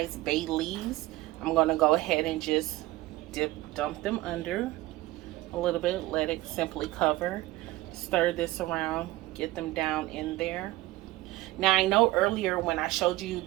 bay leaves. I'm gonna go ahead and just dump them under a little bit, let it simply cover. Stir this around, get them down in there. Now I know earlier when I showed you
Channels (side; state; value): left; quieter; 18.3 dB